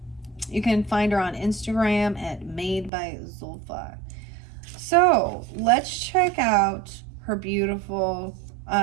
You can find her on Instagram at Made by Zulfa. So let's check out her beautiful,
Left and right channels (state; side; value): drops out; left; at 2.9 s